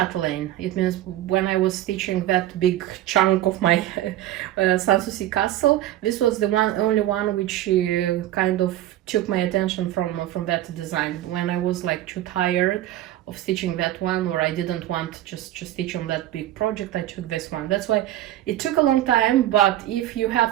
It means when I was stitching that big chunk of my Sanssouci castle, this was the only one which kind of took my attention from that design. When I was like too tired of stitching that one, or I didn't want just to stitch on that big project, I took this one. That's why it took a long time, but if you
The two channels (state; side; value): quieter; left; 13.7 dB